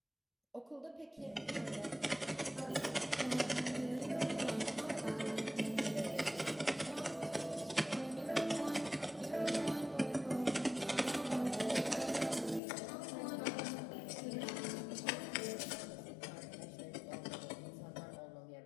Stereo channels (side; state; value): right; drops out; at 12.6 s